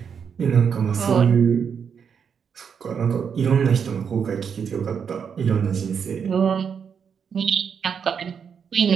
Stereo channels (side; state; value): left; quieter; 7.0 dB